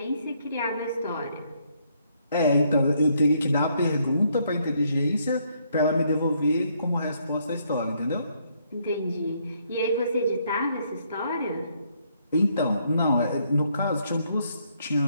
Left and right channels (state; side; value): inverted; both; correlation -0.71